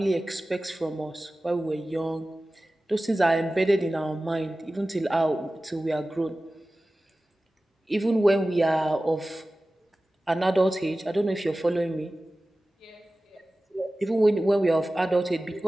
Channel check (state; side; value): normal; both; correlation 0.96